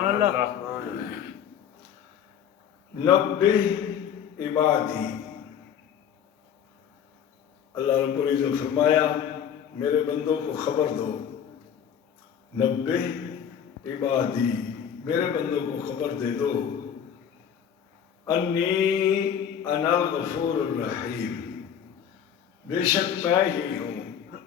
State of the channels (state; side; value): quieter; right; 8.7 dB